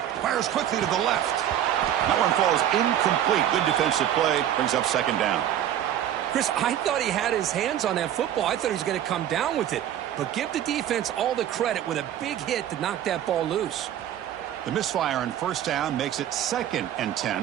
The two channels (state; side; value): quieter; left; 11.0 dB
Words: Fires quickly to the left. That one falls incomplete. Good defensive play. Brings up second down. Chris, I thought he had his hands on that football. I thought he was going to come down with it. But give the defense all the credit with a big hit to knock that ball loose. The misfire on first down makes it 2nd and